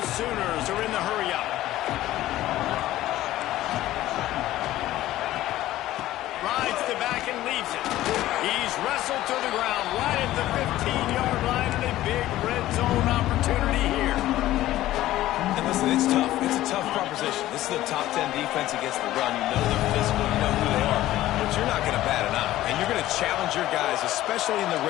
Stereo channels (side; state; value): right; quieter; 14.9 dB